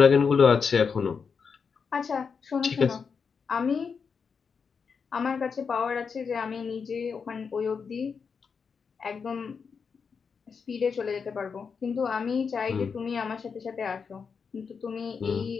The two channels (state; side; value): quieter; right; 5.8 dB